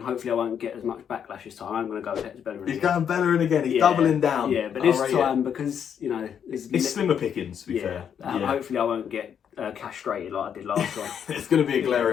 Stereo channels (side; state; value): right; quieter; 8.2 dB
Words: Hopefully, I won't get as much backlash this time. I'm going to go with Hector Bellerin. He's going Bellerin again. He's doubling down. Yeah, but this time, because, you know... It's slimmer pickings, to be fair. Hopefully, I won't get castrated like I did last time. It's going to be a